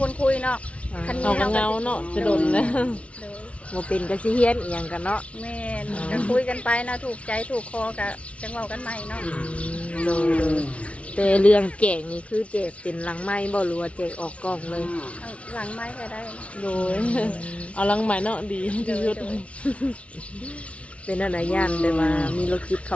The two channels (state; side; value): late; right; 0.063 ms